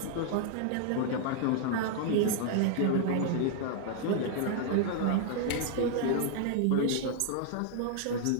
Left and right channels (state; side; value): different; both; correlation -0.01